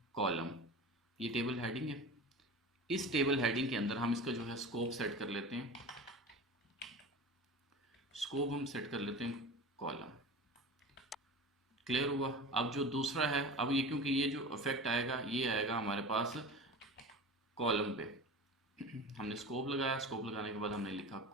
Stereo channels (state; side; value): normal; both; correlation 0.33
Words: कॉलम। ये टेबल हेडिंग है। इस टेबल हेडिंग के अंदर हम इसका जो है स्कोप सेट कर लेते हैं। स्कोप हम सेट कर लेते हैं कॉलम। क्लियर हुआ। अब जो दूसरा है, अब ये क्योंकि ये जो इफेक्ट आएगा ये आएगा हमारे पास कॉलम पे। हमने स्कोप लगाया, स्कोप लगाने के बाद हमने लिखा